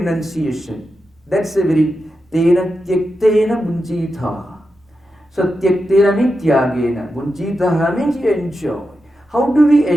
That's a very tena tyaktena bunchitha. So tyaktena means tyagena. Bunchitha means you enjoy. How do we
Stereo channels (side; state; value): both; normal; correlation 0.89